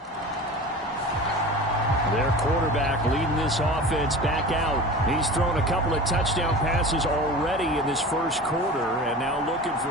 their quarterback, leading this offense back out. He's thrown a couple of touchdown passes already in this first quarter, and now looking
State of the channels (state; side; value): normal; both; correlation 0.35